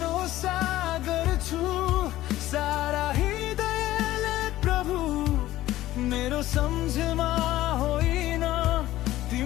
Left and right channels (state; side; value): quieter; right; 15.2 dB